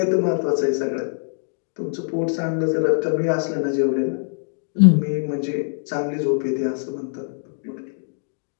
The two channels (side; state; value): right; silent; digital silence